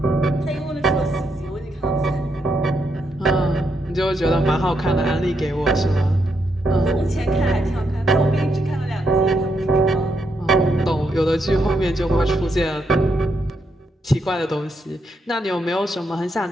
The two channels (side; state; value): both; normal; correlation 0.80